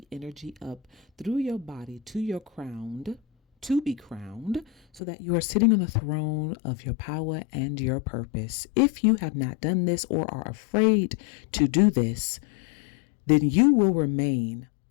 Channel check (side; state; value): right; drops out; at 5.0 s